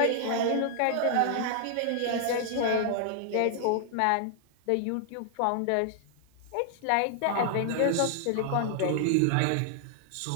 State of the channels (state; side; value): different; both; correlation 0.00